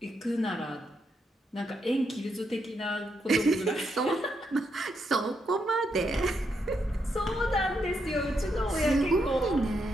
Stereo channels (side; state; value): both; normal; correlation 0.80